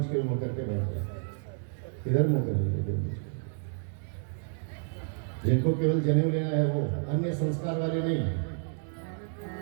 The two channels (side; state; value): left; silent; 58 dB below the other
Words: के मुँह करके बैठ जाए। इधर मुँह कर लीजिए देवमंच। जिनको केवल जनेऊ लेना है वो, अन्य संस्कार वाले नहीं।